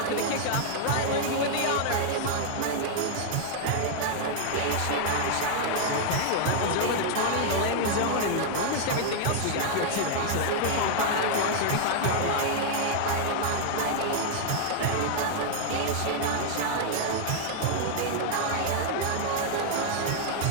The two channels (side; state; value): both; different; correlation 0.00